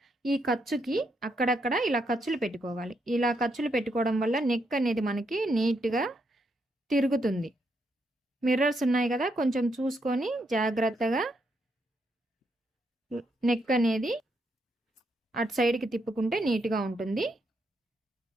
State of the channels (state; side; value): normal; both; correlation 0.78